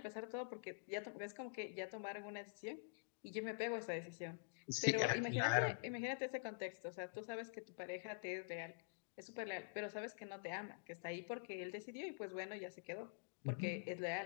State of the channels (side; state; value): right; silent; digital silence